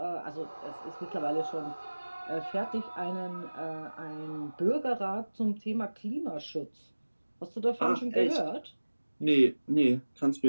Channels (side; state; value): both; inverted; correlation -1.00